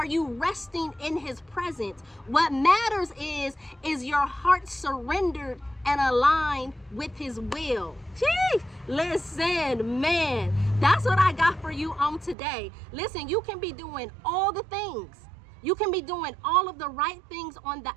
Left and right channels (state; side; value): drops out; left; at 12.4 s